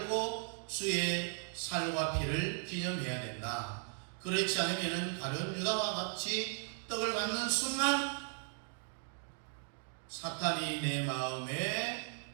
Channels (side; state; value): left; silent; 53 dB below the other